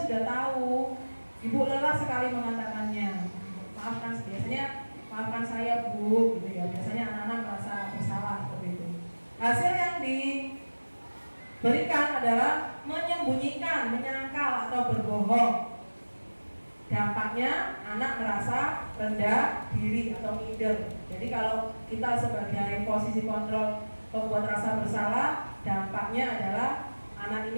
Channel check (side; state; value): both; inverted; correlation -1.00